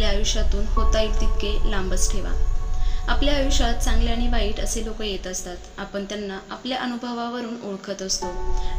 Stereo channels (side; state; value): both; identical; correlation 1.00